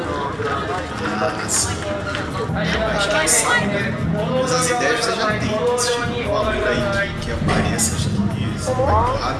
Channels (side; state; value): both; identical; correlation 1.00